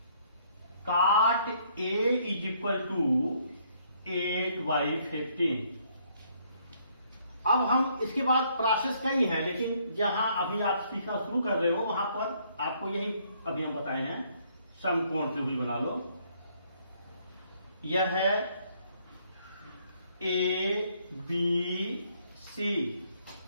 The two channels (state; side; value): inverted; both; correlation -0.67